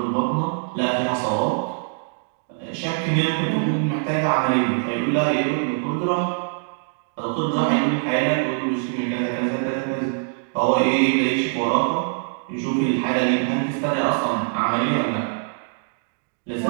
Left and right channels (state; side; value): silent; left; digital silence